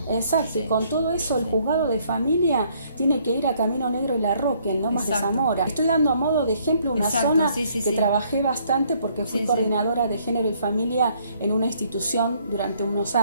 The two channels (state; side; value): inverted; both; correlation -0.66